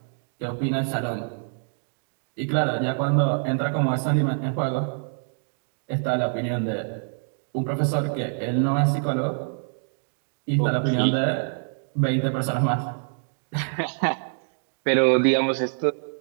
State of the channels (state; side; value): silent; left; digital silence